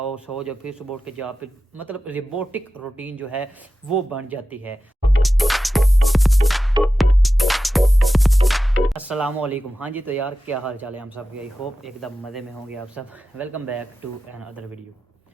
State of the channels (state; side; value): normal; both; correlation 0.93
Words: सो जाओ, फिर सुबह उठ के जॉब पे, मतलब रोबोटिक रूटीन जो है वो बन जाती है। अस्सलामुअलैकुम। हाँ जी, तो यार क्या हाल चाल है हम सब के? आई होप एकदम मज़े में होंगे आप सब। Welcome back to another video.